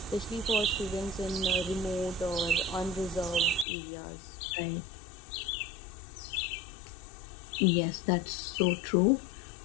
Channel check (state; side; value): drops out; right; at 3.7 s